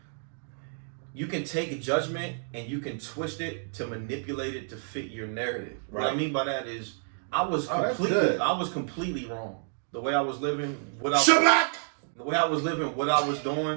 you can take a judgment and you can twist it to manipulate it to fit your narrative. Right. What I mean by that is I was completely wrong. The way I was living, what I was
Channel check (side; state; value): left; silent; digital silence